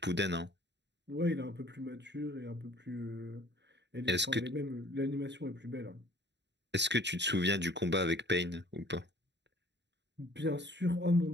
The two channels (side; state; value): left; late; 0.51 ms